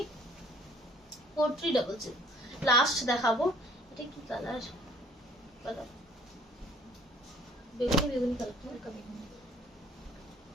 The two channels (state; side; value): normal; both; correlation 0.57